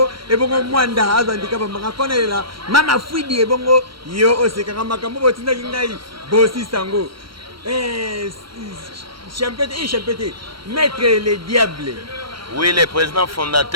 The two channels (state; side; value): late; left; 0.74 ms